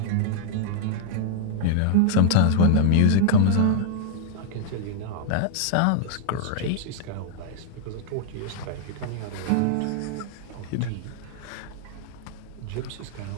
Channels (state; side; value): different; both; correlation -0.01